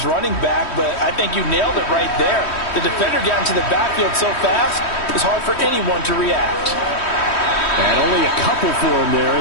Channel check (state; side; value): late; right; 3.1 ms